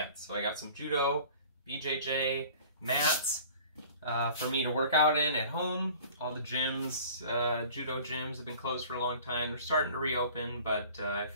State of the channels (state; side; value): inverted; both; correlation -0.46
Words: So I got some judo, BJJ mats for me to work out in at home. All the gyms, judo gyms have been closed for a long time. They're starting to reopen, but I